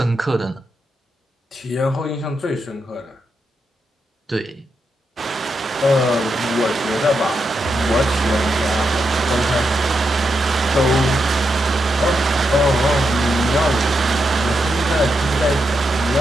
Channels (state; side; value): normal; both; correlation 0.84